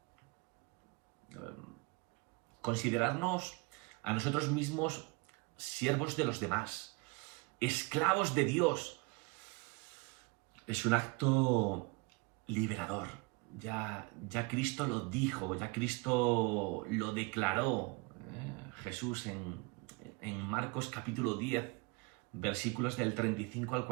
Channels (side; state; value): left; quieter; 28.1 dB